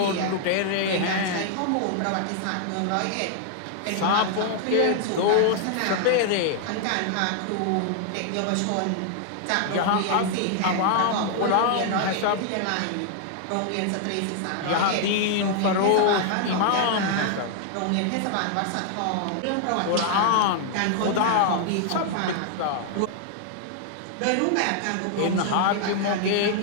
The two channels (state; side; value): different; both; correlation 0.00